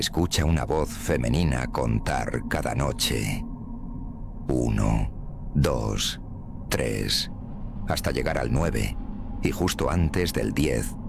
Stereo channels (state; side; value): identical; both; correlation 1.00